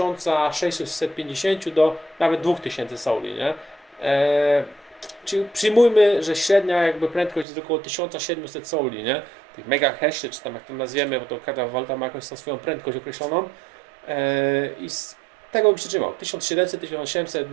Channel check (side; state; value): left; drops out; at 7.5 s